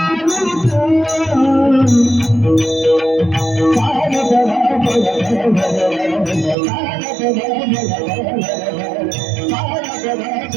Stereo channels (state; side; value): drops out; left; at 6.6 s